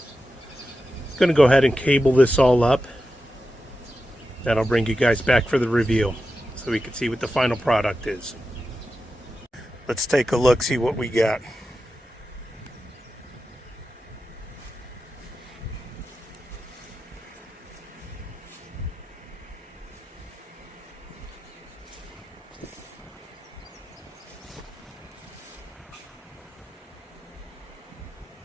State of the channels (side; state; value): both; normal; correlation 0.91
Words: I'm going to go ahead and cable this all up. Then I'll bring you guys back for the review so we can see what the final product is. Let's take a look, see what we got.